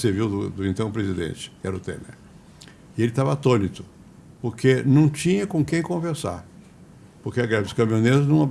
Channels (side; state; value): both; identical; correlation 1.00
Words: do então presidente, que era o Temer. E ele estava atônito, porque não tinha com quem conversar. Porque a greve dos caminhoneiros não